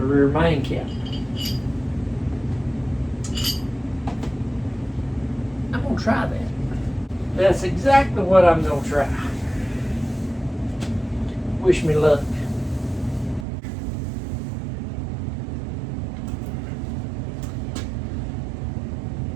rear main cap. I'm gonna try that. That's exactly what I'm gonna try. Wish me luck.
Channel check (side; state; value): left; drops out; at 13.5 s